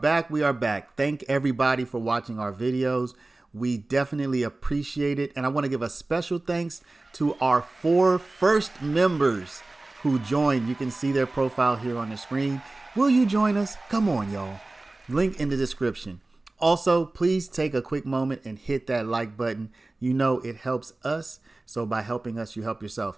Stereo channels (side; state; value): left; quieter; 3.0 dB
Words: We are back. Thank everybody for watching our videos. We definitely appreciate it. And I want to give a special thanks to our 4 first members who joined. You can see their profile here on the screen. Will you join us? Come on, y'all. Link in the description. Also, please take a quick moment and hit that like button. You know it helps us. So by helping us, you help yourself.